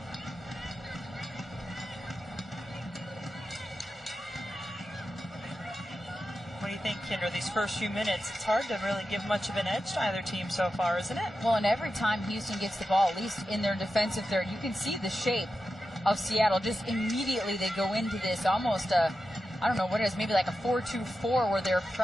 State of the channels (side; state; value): both; normal; correlation 0.91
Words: What do you think, Kendra, these first few minutes? It's hard to really give much of an edge to either team so far, isn't it? Well, and every time Houston gets the ball, at least in their defensive third, you can see the shape of Seattle. Just immediately they go into this almost I don't know what it is, maybe like a 4-2-4 where they're